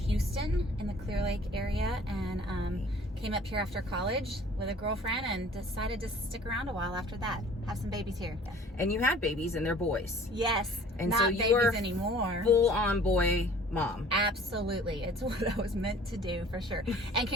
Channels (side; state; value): both; normal; correlation 0.50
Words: in the Clear Lake area, and came up here after college with a girlfriend and decided to stick around a while after that. Have some babies here. Yeah. And you had babies and they're boys. Yes. And not so you babies are anymore. Full-on boy mom. Absolutely. It's what I was meant to do for sure. And